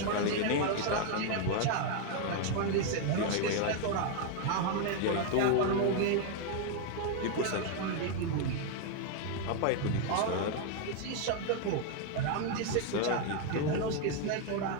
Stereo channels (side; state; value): both; different; correlation 0.01